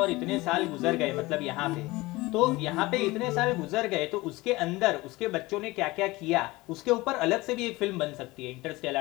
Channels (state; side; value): quieter; right; 20.9 dB